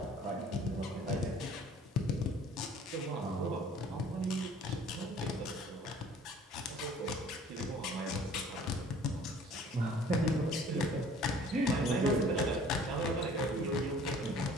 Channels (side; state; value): both; normal; correlation 0.52